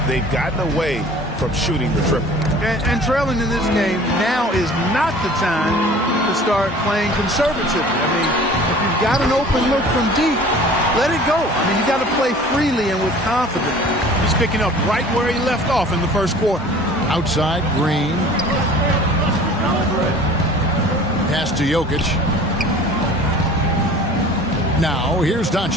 they've gotten away from shooting the triple. And trailing in this game, now is not the time to start playing conservatively. I mean, if you've got an open look from deep, let it go. I mean, you got to play freely and with confidence. He's picking up right where he left off in the first quarter. Outside, Green. Pass to Jokic. Now, here's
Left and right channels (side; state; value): both; normal; correlation 0.46